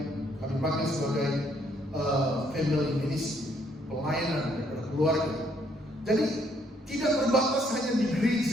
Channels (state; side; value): normal; both; correlation 0.68